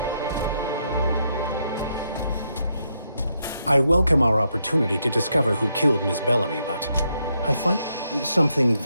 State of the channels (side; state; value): both; inverted; correlation -0.79